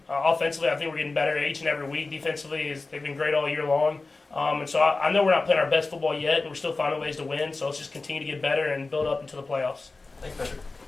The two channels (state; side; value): quieter; right; 3.6 dB